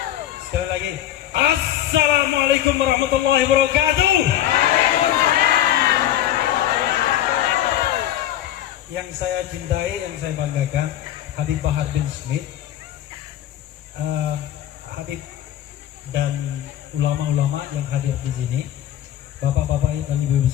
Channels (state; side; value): quieter; right; 12.1 dB